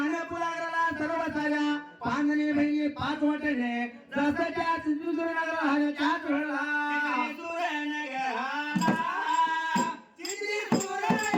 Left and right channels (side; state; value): both; identical; correlation 1.00